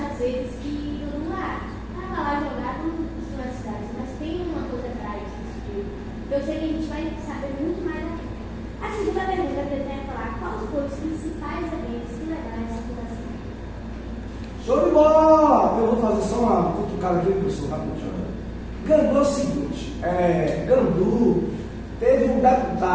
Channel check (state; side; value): identical; both; correlation 1.00